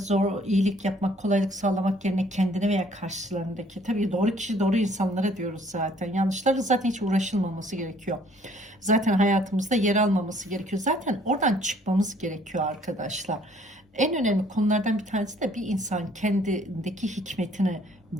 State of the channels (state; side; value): normal; both; correlation 0.60